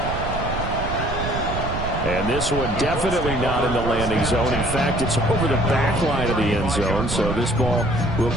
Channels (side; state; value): right; noise; rumble, 5 dB below the sound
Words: And this one definitely not in the landing zone. In fact, it's over the back line of the end zone, so this ball will